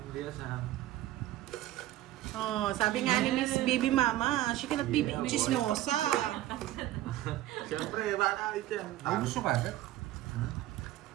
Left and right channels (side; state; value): left; quieter; 14.8 dB